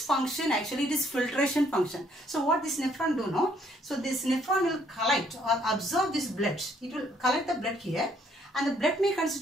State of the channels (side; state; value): both; normal; correlation 0.66